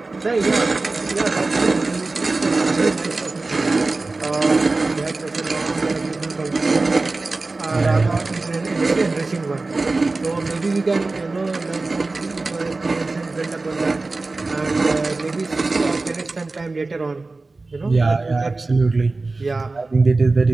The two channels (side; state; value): left; quieter; 3.4 dB